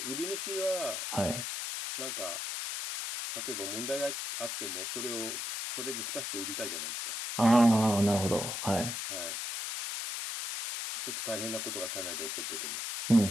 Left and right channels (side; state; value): left; noise; hiss, 4 dB below the sound